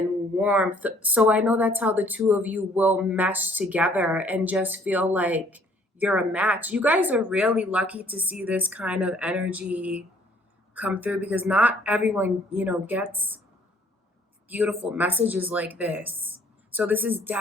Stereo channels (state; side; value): normal; both; correlation 0.61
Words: warmth. So I know that's how the two of you will mesh together and just feel like you're a match. You guys are really lucky to see this kind of energy come through because not everyone, gets beautiful messages like this. So this is